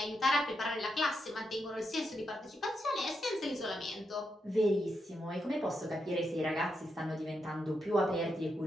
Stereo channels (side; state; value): both; normal; correlation 0.84